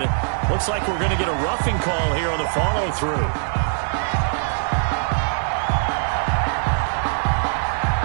Looks like we're going to get a roughing call here on the follow-through.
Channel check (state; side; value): silent; left; digital silence